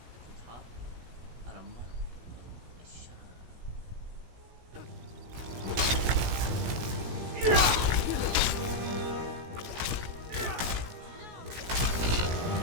the top. Out of month.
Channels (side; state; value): left; late; 17 ms